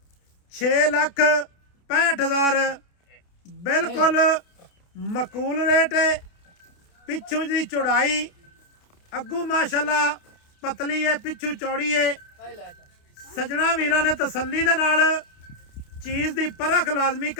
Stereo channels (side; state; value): right; late; 29 ms